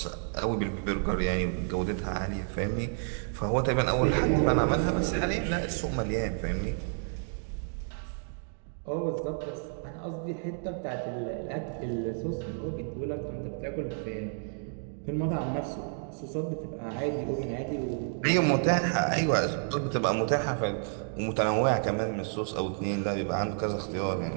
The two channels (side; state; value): left; silent; 57 dB below the other